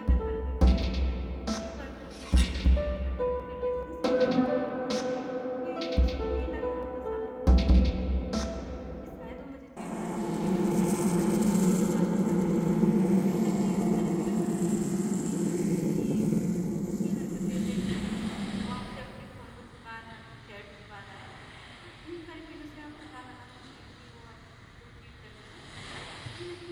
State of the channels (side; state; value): both; identical; correlation 1.00